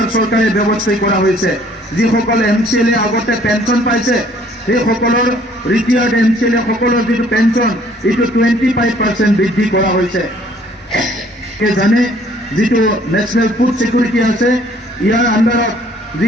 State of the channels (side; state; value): both; normal; correlation 0.59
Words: চৰকাৰে ব্যৱস্থা কৰা হৈছে যিসকলে এমচিএলএ আগতে পেনশন পাইছে সেই সকলৰ ৰিটায়াৰ্ড এমচিএলএ সকলৰ যিটো পেনশন এইটো 25% বৃদ্ধি কৰা হৈছে জানে যিটো ন্যাশনাল ফুড সিকিউৰিটি আছে ইয়াৰ আণ্ডাৰত যি